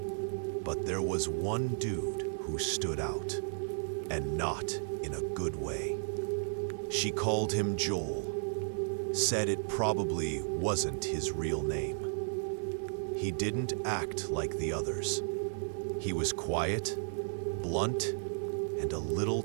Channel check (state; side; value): silent; left; digital silence